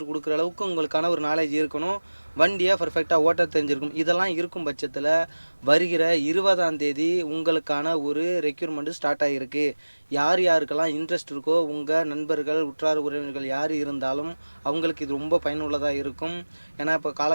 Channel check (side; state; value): both; inverted; correlation -1.00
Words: கொடுக்குற அளவுக்கு உங்களுக்கான ஒரு நாலேஜ் இருக்கணும். வண்டியை பர்ஃபெக்டாக ஓட்ட தெரிஞ்சிருக்கும். இதெல்லாம் இருக்கும் பட்சத்தில் வருகிற 20ஆம் தேதி உங்களுக்கான ஒரு ரெக்யூர்மெண்ட்டு ஸ்டார்ட் ஆகிருக்கு. யார் யாருக்கெல்லாம் இன்ட்ரெஸ்ட் இருக்கோ உங்கள் நண்பர்கள் உற்றார் உறவினர்கள் யார் இருந்தாலும் அவங்களுக்கு இது ரொம்ப பயனுள்ளதாக இருக்கும். ஏன்னா இப்போ